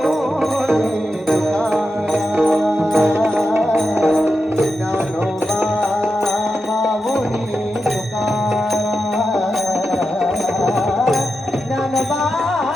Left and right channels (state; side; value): normal; both; correlation 0.89